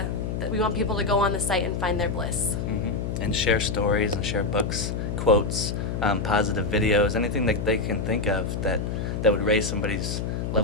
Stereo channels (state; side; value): noise; left; hum, 3 dB below the sound